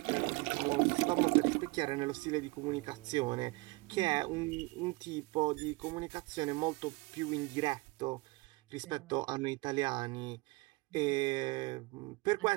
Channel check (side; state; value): left; quieter; 24.8 dB